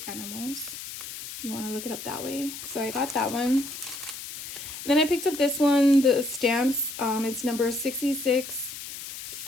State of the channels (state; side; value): noise; left; hiss, 10 dB below the sound